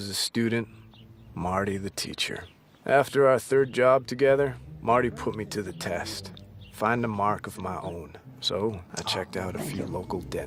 a student, Marty the teacher. After our third job together, Marty put me to the test. Find a mark of my own. So I checked out a few local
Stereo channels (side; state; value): both; identical; correlation 1.00